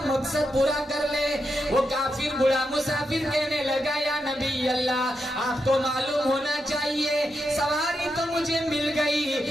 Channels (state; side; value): normal; both; correlation 0.85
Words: मकसद पूरा कर ले। वो काफिर बूढ़ा मुसाफिर कहने लगा, या नबी अल्लाह, आपको मालूम होना चाहिए सवारी तो मुझे मिल गई,